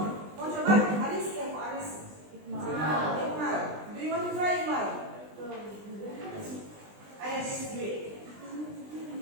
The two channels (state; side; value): late; left; 20 ms